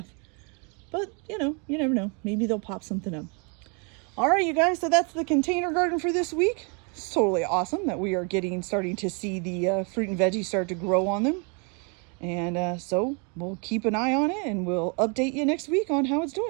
But, you know, you never know. Maybe they'll pop something up. All right, you guys. So that's the container garden for this week. It's totally awesome that we are starting to see the fruit and veggies start to grow on them. And so we'll keep an eye on it and we'll update you next week on how it's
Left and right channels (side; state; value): left; quieter; 35.2 dB